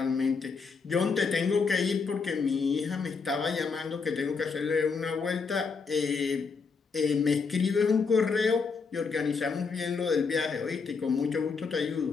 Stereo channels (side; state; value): right; quieter; 5.0 dB